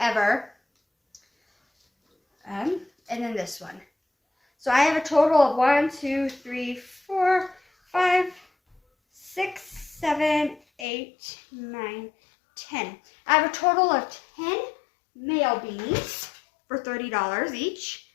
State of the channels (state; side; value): drops out; right; at 10.9 s